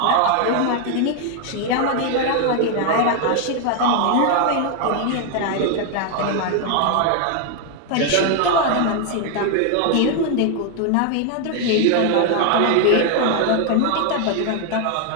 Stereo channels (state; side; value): different; both; correlation 0.01